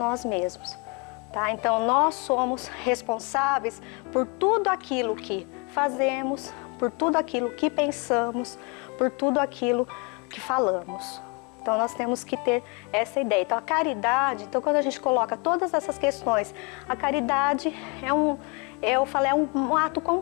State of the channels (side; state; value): right; quieter; 31.4 dB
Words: mesmos. Tá? Então nós somos responsáveis por tudo aquilo que fazemos, por tudo aquilo que pensamos, por tudo aquilo que falamos. Então nós temos que ter essa ideia. Então a caridade, quando a gente coloca todas essas questões, a caridade é um ato